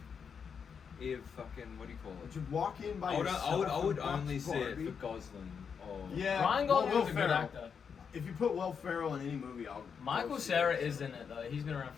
if fucking what do you call Would it? you walk in by I would yourself and only watch see it Barbie? for Gosling or Yeah. Ryan well, Gosling's Will a good Ferrell. actor. If you put Will Ferrell in any movie, I'll. Michael go see Cera it. is in it though. He's been around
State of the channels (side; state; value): right; quieter; 6.6 dB